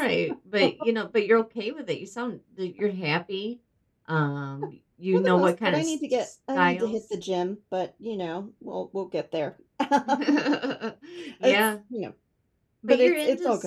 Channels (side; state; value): both; identical; correlation 1.00